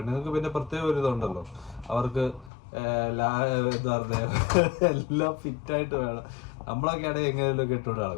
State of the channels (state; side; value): drops out; right; at 2.5 s